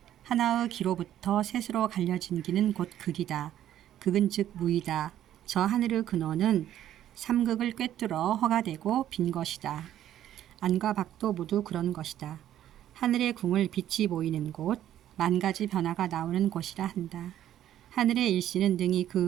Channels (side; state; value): left; quieter; 11.8 dB